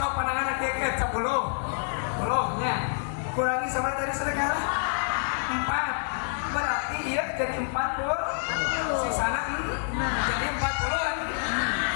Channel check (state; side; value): silent; right; digital silence